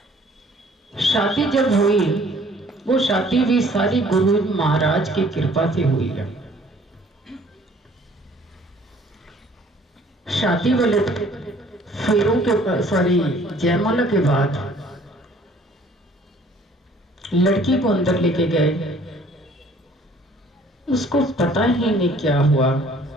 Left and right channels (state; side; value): normal; both; correlation 0.56